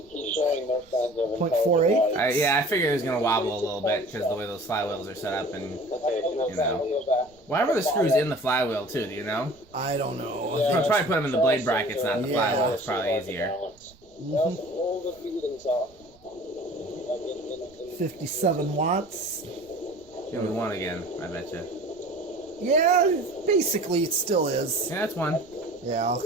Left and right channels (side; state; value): right; noise; rumble, 29 dB below the sound